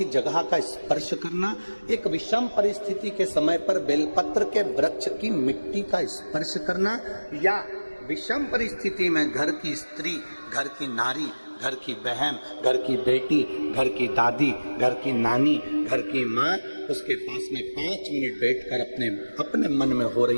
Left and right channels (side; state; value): both; inverted; correlation -1.00